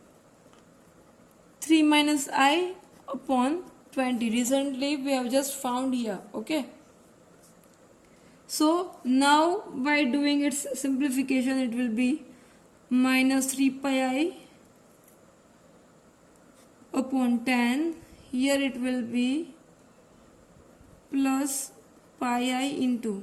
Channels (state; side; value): identical; both; correlation 1.00